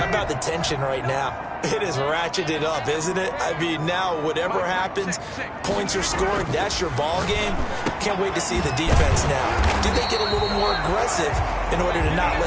about the tension right now? It is ratcheted up, isn't it? I mean, now whatever happens, points are scored, that's your ball game. Can't wait to see the defense now. Do they get a little more aggressive in order to not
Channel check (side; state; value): both; identical; correlation 1.00